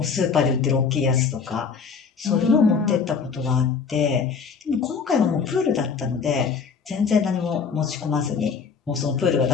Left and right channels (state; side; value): quieter; right; 5.7 dB